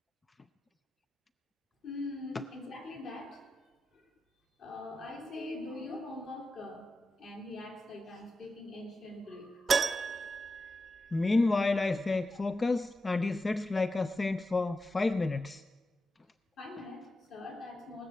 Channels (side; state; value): both; normal; correlation 0.90